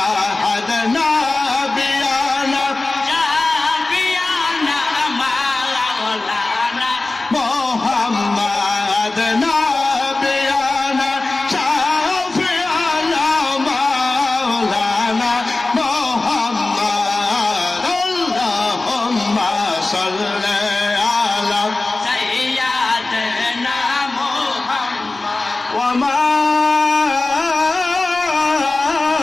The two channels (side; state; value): right; quieter; 3.2 dB